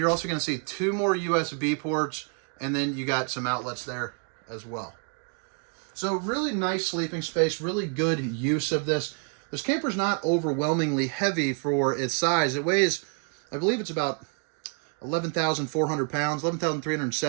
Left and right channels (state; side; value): quieter; left; 38.5 dB